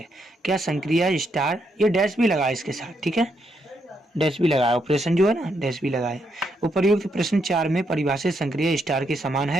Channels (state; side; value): normal; both; correlation 0.78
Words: क्या संक्रिया स्टार, ये डैश भी लगाए इसके साथ, ठीक है, डैश भी लगाया, ऑपरेशन जो है ना डैश भी लगाए। उपर्युक्त प्रश्न 4 में परिभाषित संक्रिया स्टार के समान